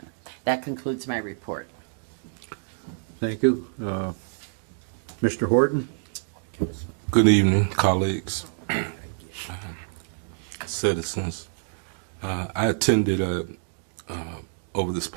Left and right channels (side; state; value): left; silent; digital silence